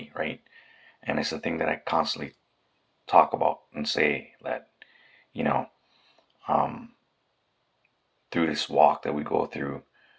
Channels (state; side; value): identical; both; correlation 1.00